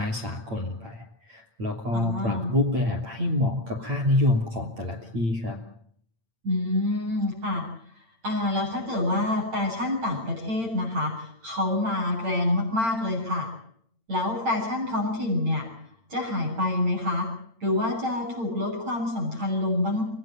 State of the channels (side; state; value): left; late; 8.8 ms